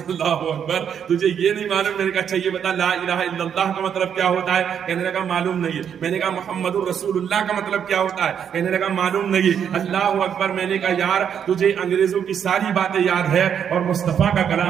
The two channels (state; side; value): quieter; left; 8.2 dB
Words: اللہ اکبر، تجھے یہ نہیں معلوم؟ میں نے کہا اچھا یہ بتا لا الہ الا اللہ کا مطلب کیا ہوتا ہے؟ کہنے لگا معلوم نہیں ہے۔ میں نے کہا محمد الرسول اللہ کا مطلب کیا ہوتا ہے؟ کہنے لگا معلوم نہیں ہے۔ اللہ اکبر، میں نے کہا یار تجھے انگریزوں کی ساری باتیں یاد ہے اور مصطفیٰ کا